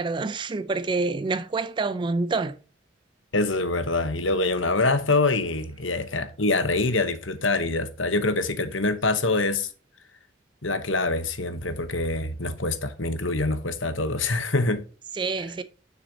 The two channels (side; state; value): both; normal; correlation 0.05